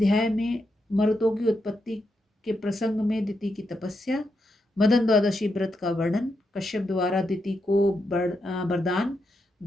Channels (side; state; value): both; normal; correlation 0.83